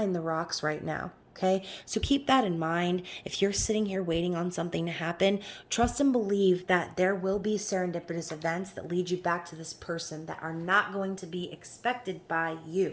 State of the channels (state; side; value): identical; both; correlation 1.00